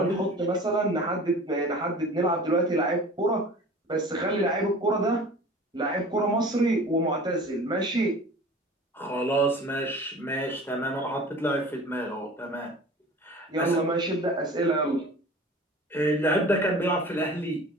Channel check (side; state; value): both; normal; correlation 0.41